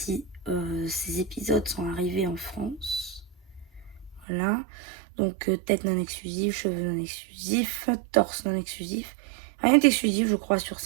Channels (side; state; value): left; drops out; at 4.2 s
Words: ces épisodes sont arrivés en France. Voilà, donc tête non exclusive, cheveux non exclusifs, torse non exclusif. Rien d'exclusif, je crois, sur